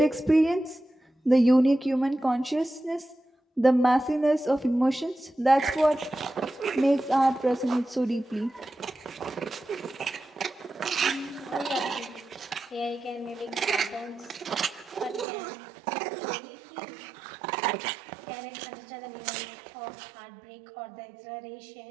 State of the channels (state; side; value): drops out; left; at 15.2 s